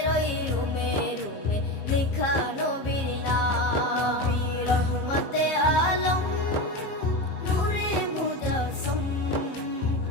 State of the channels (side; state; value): right; late; 15 ms